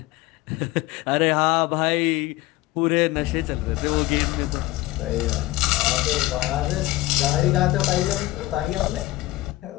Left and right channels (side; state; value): right; quieter; 18.2 dB